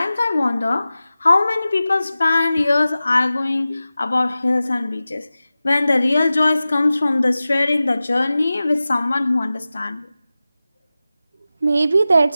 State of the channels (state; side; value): inverted; both; correlation -0.95